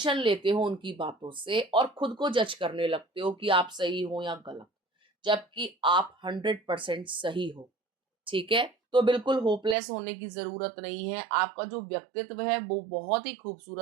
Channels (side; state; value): left; drops out; at 9.8 s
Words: लेते हो उनकी बातों से, और खुद को जज करने लगते हो कि आप सही हो या गलत, जबकि आप 100% सही हो। ठीक है। तो बिल्कुल होपलेस होने की जरूरत नहीं है। आपका जो व्यक्तित्व है वो बहुत ही